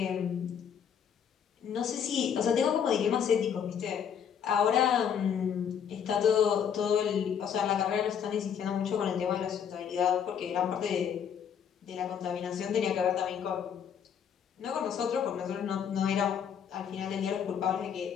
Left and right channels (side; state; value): right; quieter; 8.1 dB